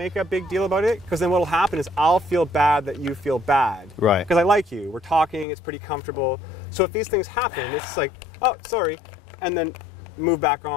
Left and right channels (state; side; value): drops out; right; at 5.5 s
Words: a big deal about it, because then what'll happen is I'll feel bad that you feel bad. Right. Because I like you. We're talking, it's pretty comfortable. So if these things happen, it's like, oh, sorry, and then move back